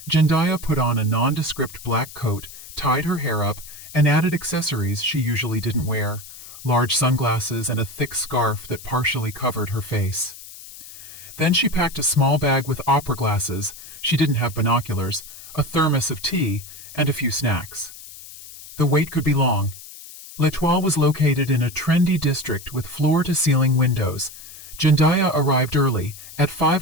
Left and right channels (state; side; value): noise; left; hiss, 16 dB below the sound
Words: Jendaya put on a nondescript black coat, tied her hair up, and added accessories she usually didn't wear, large sunglasses and a thick scarf that partially covered her face. Then she packed a small bag with opera glasses, she didn't have binoculars, a thermos of tea, and a few snacks. The wait could be long. L'Etoile was located in a trendy district with floor-to-ceiling windows. Jendaya arrived early, at